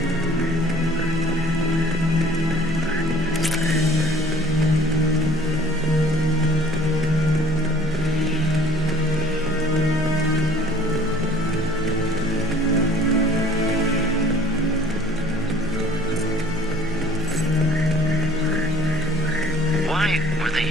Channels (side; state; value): both; normal; correlation 0.52